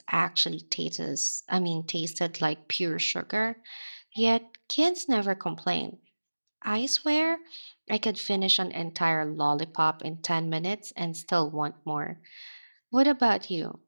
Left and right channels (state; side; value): inverted; both; correlation -1.00